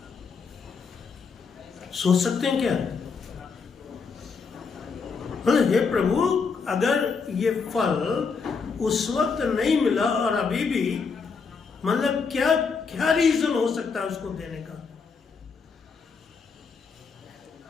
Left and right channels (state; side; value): quieter; right; 5.2 dB